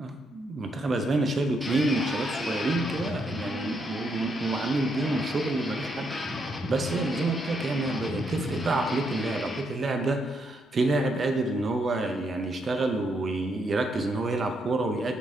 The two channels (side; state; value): both; normal; correlation 0.77